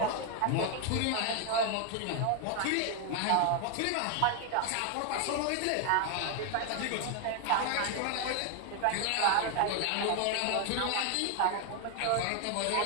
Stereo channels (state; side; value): different; both; correlation 0.01